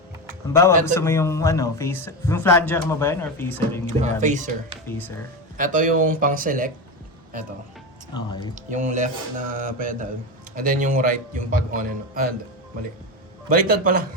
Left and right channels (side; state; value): both; normal; correlation 0.17